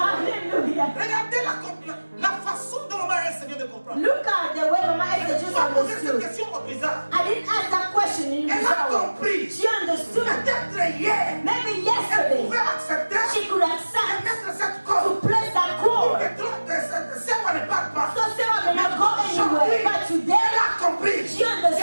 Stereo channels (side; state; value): both; inverted; correlation -1.00